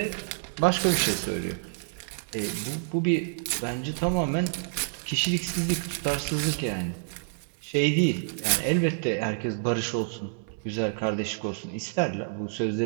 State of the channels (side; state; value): left; silent; 59 dB below the other